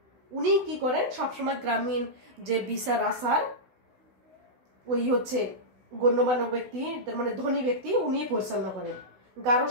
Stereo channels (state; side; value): late; left; 16 ms